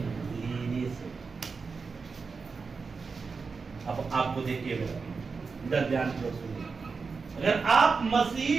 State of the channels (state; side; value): quieter; left; 4.8 dB